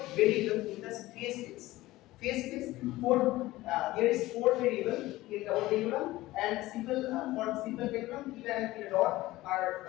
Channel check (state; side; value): quieter; right; 17.7 dB